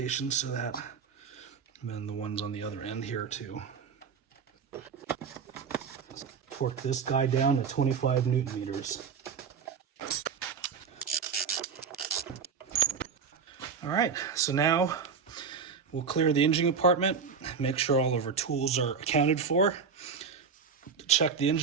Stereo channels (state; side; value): quieter; left; 5.9 dB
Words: so that, and then the ones on the other end here too. Torque this guy down to 25 Newton meters. All right, so now we'll clear the engine compartment, make sure all of our tools are accounted for. Check the